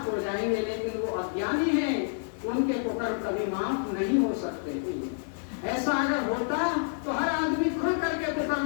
हो जाएंगे, लेकिन वो अज्ञानी हैं, उनके कुकर्म कभी माफ नहीं हो सकते। ऐसा अगर होता तो हर आदमी खुल करके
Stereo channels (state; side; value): silent; right; digital silence